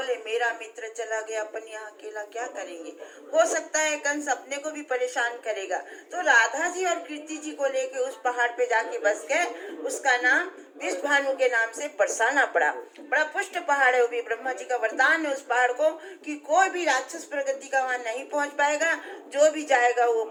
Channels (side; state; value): both; identical; correlation 1.00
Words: मेरा मित्र चला गया, अपन यहाँ अकेला क्या करेंगे। हो सकता है कंस अपने को भी परेशान करेगा। तो राधा जी और कीर्ति जी को लेके उस पहाड़ पे जाके बस गए। उसका नाम विष भानु के नाम से बरसाना पड़ा। बड़ा पुष्ट पहाड़ है, वो भी ब्रह्मा जी का वरदान है उस पहाड़ को कि कोई भी राक्षस प्रगति का वहाँ नहीं पहुँच पाएगा। जो भी जाएगा वो